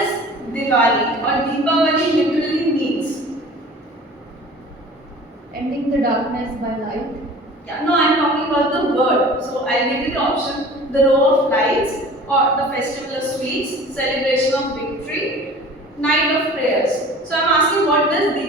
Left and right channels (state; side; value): normal; both; correlation 0.43